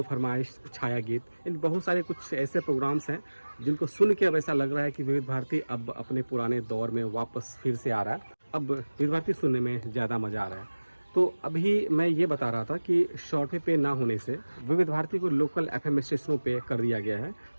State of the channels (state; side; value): inverted; both; correlation -1.00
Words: फरमाइश, छाया गीत, इन बहुत सारे कुछ ऐसे प्रोग्राम्स हैं जिनको सुन के अब ऐसा लग रहा है कि विविध भारती अब अपने पुराने दौर में वापस फिर से आ रहा है। अब विविध भारती सुनने में ज़्यादा मज़ा आ रहा है। तो अभी मैं ये बता रहा था कि शॉर्ट वे पे ना होने से विविध भारती को लोकल FM स्टेशनों पे कर दिया गया है